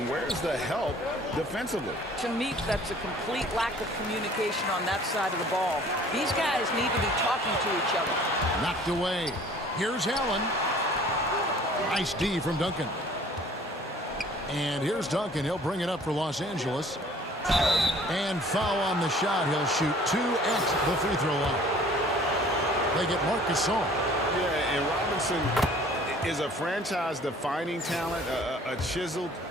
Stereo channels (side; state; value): both; normal; correlation 0.52